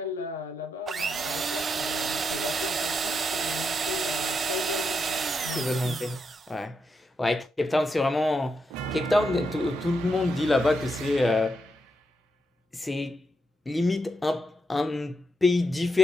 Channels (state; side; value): normal; both; correlation 0.83